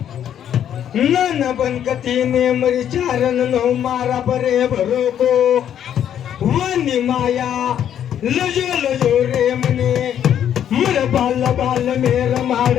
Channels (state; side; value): quieter; right; 9.9 dB